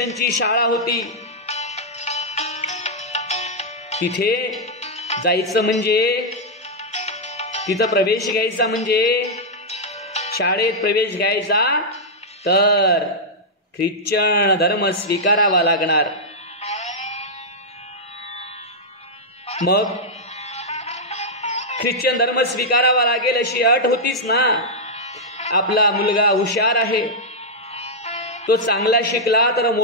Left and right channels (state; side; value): normal; both; correlation -0.06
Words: शाळा होती. तिथे जायचं म्हणजे, तिथं प्रवेश घ्यायचा म्हणजे, शाळेत प्रवेश घ्यायचा तर ख्रिश्चन धर्म स्वीकारावा लागणार. मग ख्रिश्चन धर्म स्वीकारावा लागेल अशी अट होतीच ना. आपला मुलगा हुशार आहे, तो चांगला शिकला तर